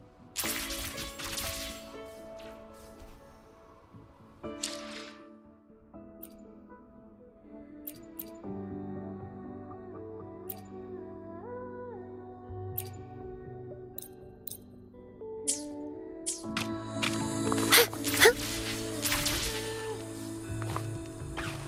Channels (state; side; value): identical; both; correlation 1.00